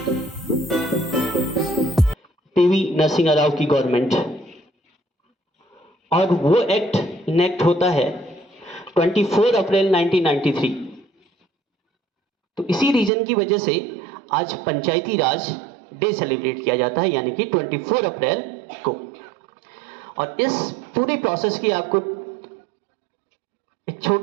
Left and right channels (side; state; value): left; drops out; at 13.1 s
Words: Narasimha Rao की government, और वो एक्ट इनेक्ट होता है 24 अप्रैल 1993। तो इसी रीजन की वजह से आज पंचायती राज डे सेलिब्रेट किया जाता है, यानी कि 24 अप्रैल को। और इस पूरे प्रोसेस की आपको एक